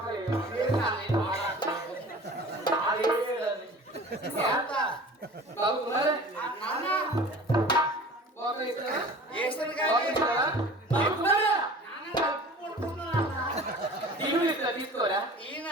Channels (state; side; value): normal; both; correlation 0.42